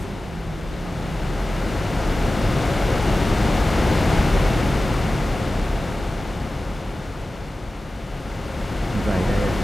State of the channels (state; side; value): normal; both; correlation 0.95